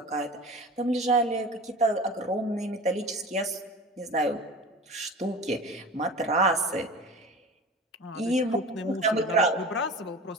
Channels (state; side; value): normal; both; correlation 0.36